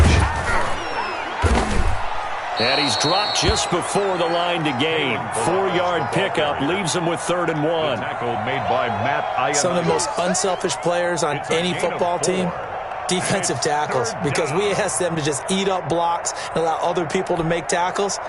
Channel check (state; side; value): identical; both; correlation 1.00